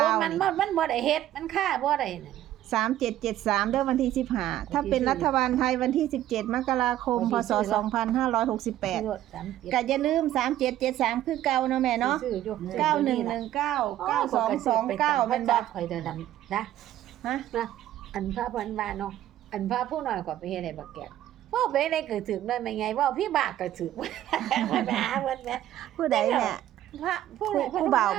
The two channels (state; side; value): quieter; left; 12.9 dB